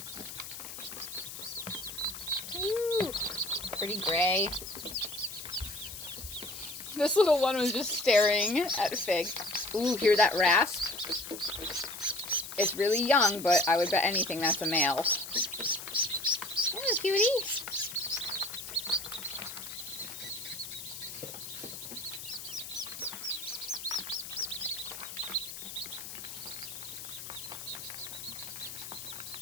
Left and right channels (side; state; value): left; noise; hiss, 10 dB below the sound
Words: Ooh, pretty gray. This little one was just staring at Fig. Ooh, hear that rasp? It's really young, but I would bet anything that's a male. Oh, cutie.